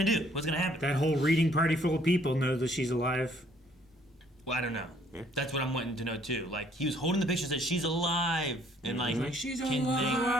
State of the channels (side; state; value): both; normal; correlation 0.63